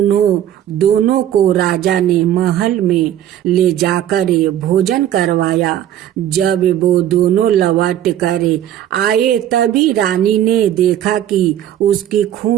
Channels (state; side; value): quieter; left; 11.4 dB